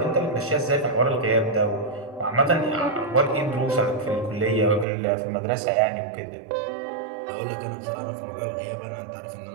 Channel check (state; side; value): drops out; left; at 4.9 s